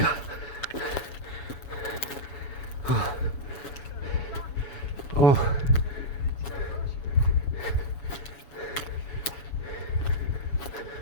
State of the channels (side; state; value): right; late; 7.1 ms